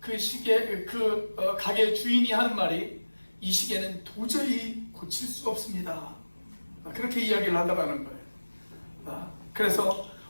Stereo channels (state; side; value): inverted; both; correlation -1.00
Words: 가게 주인이 하는 말이 이 시계는 도저히 고칠 수 없습니다. 그렇게 이야기를 하더라는 거예요. 그래서